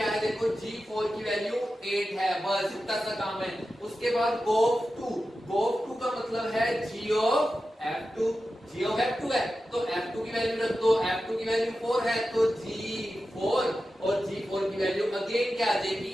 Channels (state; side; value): normal; both; correlation 0.92